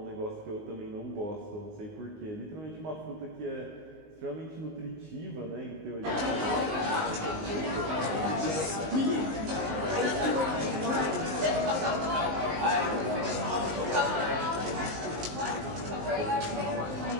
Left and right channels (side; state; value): left; late; 19 ms